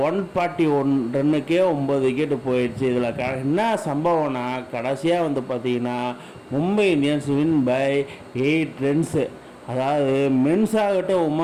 141 ரன்னுக்கே 9 விக்கெட்டு போயிடுச்சு. இதில் என்ன சம்பவம்னா கடைசியாக வந்து பார்த்தீங்கன்னா Mumbai Indians win by 8 runs. அதாவது மென்ஸ் ஆகட்டும்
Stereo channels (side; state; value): both; identical; correlation 1.00